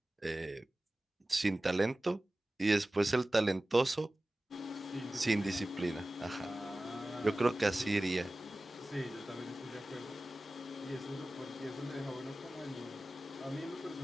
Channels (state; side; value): normal; both; correlation 0.97